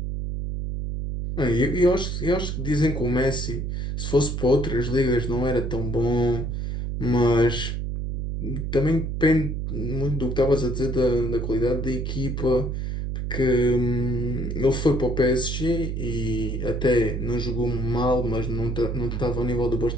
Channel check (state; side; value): noise; right; hum, 3 dB below the sound